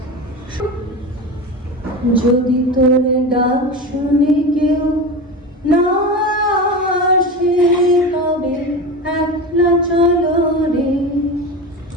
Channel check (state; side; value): normal; both; correlation 0.25